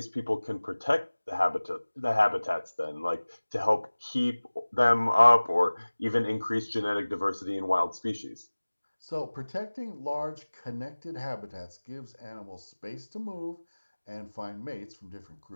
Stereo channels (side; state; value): both; inverted; correlation -1.00